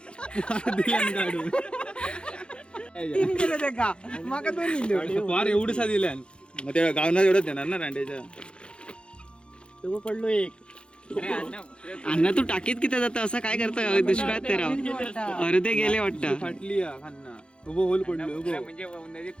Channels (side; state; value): right; late; 0.054 ms